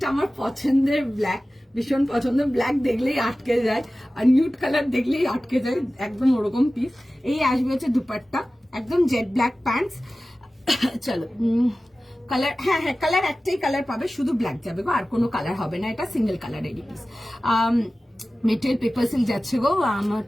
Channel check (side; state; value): both; normal; correlation 0.96